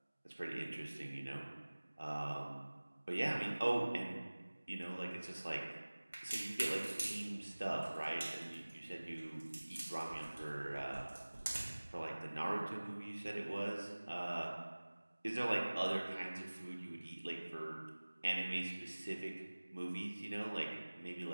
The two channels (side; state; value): both; inverted; correlation -1.00